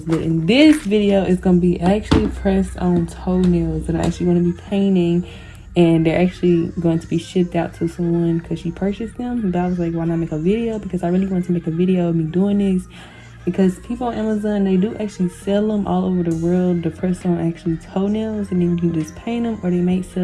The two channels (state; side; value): identical; both; correlation 1.00